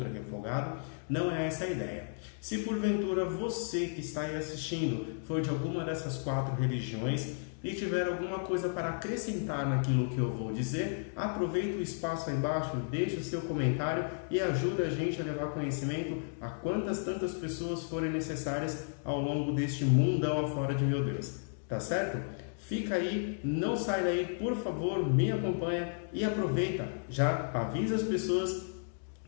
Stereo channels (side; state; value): right; silent; digital silence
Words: é refogado. Não é essa a ideia. Se porventura você que está aí assistindo for de alguma dessas quatro religiões e tiver alguma coisa para acrescentar naquilo que eu vou dizer, aproveita o espaço aí embaixo, deixa o seu comentário e ajuda a gente a levar conhecimento a quantas tantas pessoas forem necessárias ao longo deste mundão afora de meu Deus. Tá certo? Fica aí, não sai daí, por favor, me acompanha e aproveita, já avisa as pessoas